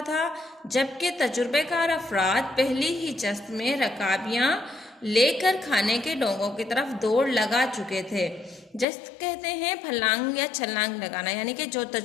था, जबकि तजुर्बेकार अफराद पहली ही जस्त में रकाबियां लेकर खाने के डोंगों की तरफ दौड़ लगा चुके थे। जस्त कहते हैं फलांग या छलांग लगाना, यानी कि जो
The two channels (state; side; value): drops out; right; at 8.8 s